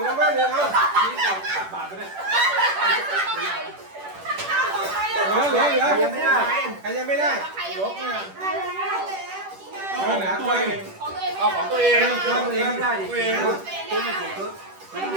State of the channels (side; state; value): left; late; 10 ms